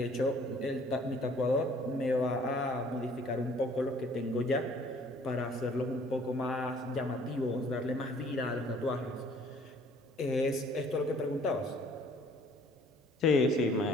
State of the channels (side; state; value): both; normal; correlation 0.57